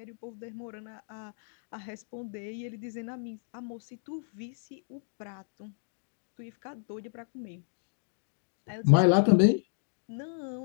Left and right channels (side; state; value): right; silent; digital silence